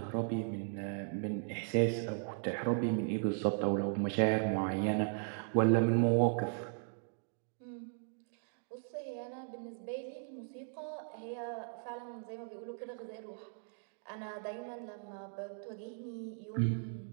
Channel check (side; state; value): left; silent; digital silence